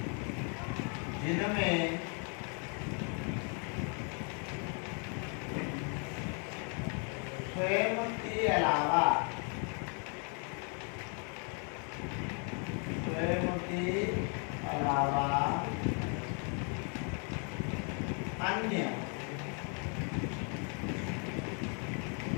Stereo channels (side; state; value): right; quieter; 38.6 dB